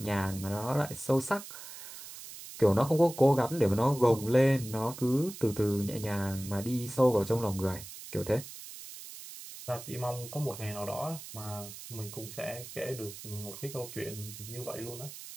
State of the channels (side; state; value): right; noise; hiss, 13 dB below the sound